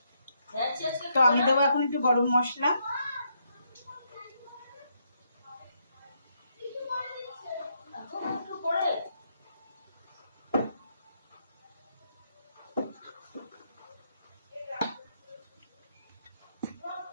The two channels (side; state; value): both; inverted; correlation -0.77